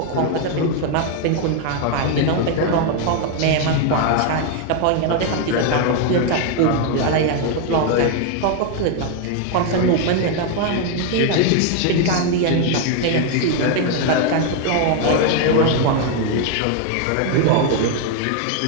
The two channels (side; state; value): both; different; correlation 0.01